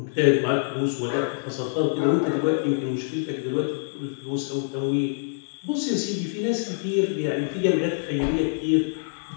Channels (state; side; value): silent; right; digital silence